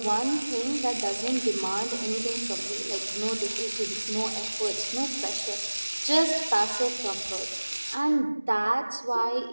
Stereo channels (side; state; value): both; inverted; correlation -1.00